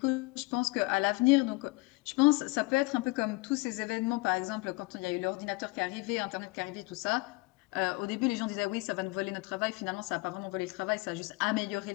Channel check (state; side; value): quieter; right; 24.8 dB